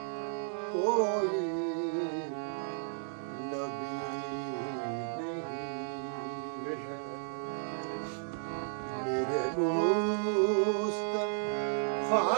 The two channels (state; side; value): silent; left; digital silence